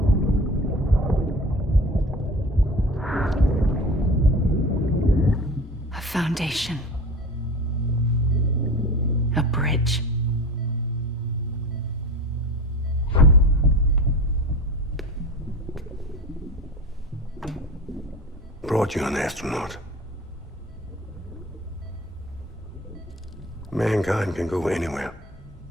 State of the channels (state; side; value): normal; both; correlation 0.34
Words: a foundation. A bridge. Brought you an astronaut. Mankind can go anywhere,